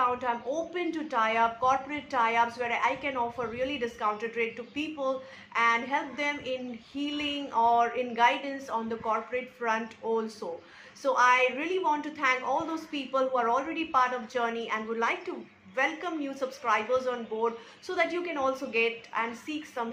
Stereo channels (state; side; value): identical; both; correlation 1.00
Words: I'm open to tie-up, corporate tie-ups where I can offer really discounted rate to people and help them in healing or in guidance on the corporate front also. So I really want to thank all those people who are already part of Journey and would like to welcome new subscribers on board so that you can also get and seek some